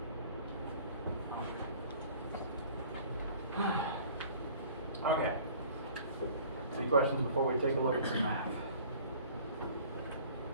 Okay. Any questions before we take a look at some math?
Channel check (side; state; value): both; inverted; correlation -0.49